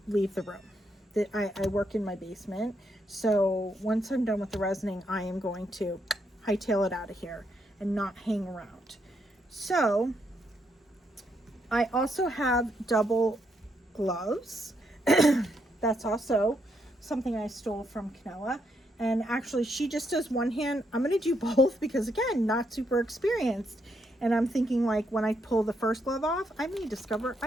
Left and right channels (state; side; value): normal; both; correlation 0.77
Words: leave the room. I work in my basement, so once I'm done with the resining, I am going to hightail it out of here and not hang around. So I also have double gloves. That's also something I stole from Canella. And actually, she just does one hand. I'm going to do both because, again, not super experienced. And I'm thinking, like, when I pull the first glove off, I may discover